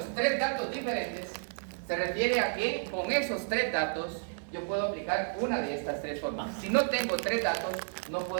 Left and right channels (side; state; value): left; silent; digital silence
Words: 3 datos diferentes, se refiere a que con esos 3 datos yo puedo aplicar una de estas 3 fórmulas. Si no tengo 3 datos, no